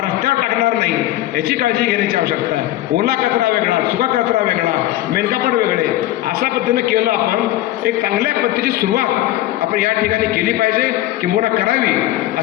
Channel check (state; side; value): quieter; right; 15.1 dB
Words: रस्त्यावर टाकणार नाही याची काळजी घेण्याची आवश्यकता आहे. ओला कचरा वेगळा, सुका कचरा वेगळा, मेनकापड वेगळे, अशा पद्धतीनं केलं आपण एक चांगल्या पद्धतीची सुरुवात आपण या ठिकाणी केली पाहिजे, किंबहुना करावी